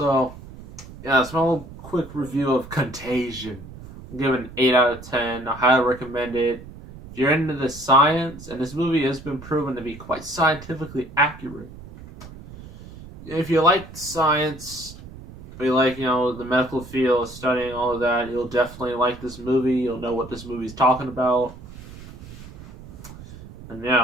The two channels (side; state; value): right; noise; rumble, 16 dB below the sound